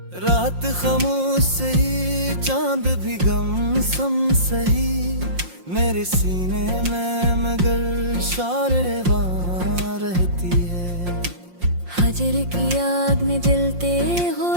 रात खामोश सही चांद भी गम सम सही, मेरे सीने में मगर शारेबां रहती है। फजर की आग में जलते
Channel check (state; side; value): late; left; 5.6 ms